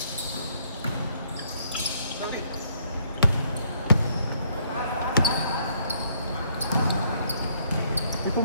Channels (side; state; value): both; inverted; correlation -0.68